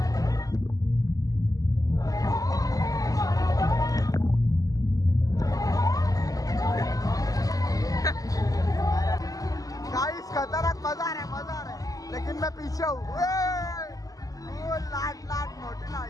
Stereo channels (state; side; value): late; right; 0.17 ms